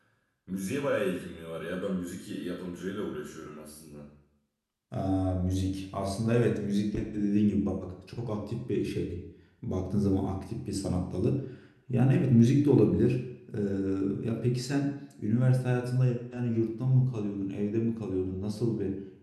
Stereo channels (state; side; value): identical; both; correlation 1.00